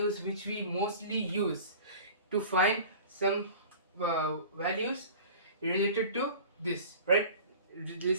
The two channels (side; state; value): both; inverted; correlation -0.41